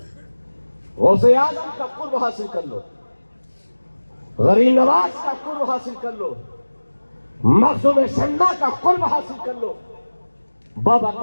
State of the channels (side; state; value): both; inverted; correlation -1.00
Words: गौसे आजम का कुर्ब हासिल कर लो, गरीब नवाज का कुर्ब हासिल कर लो, मखदूम सन्ना का कुर्ब हासिल कर लो, बाबा